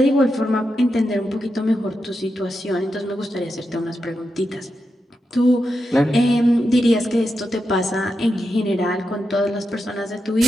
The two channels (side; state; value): both; normal; correlation 0.87